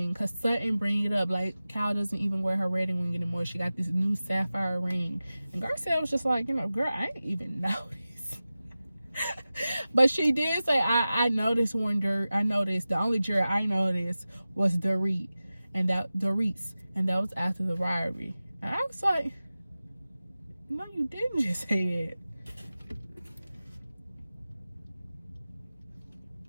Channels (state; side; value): inverted; both; correlation -0.96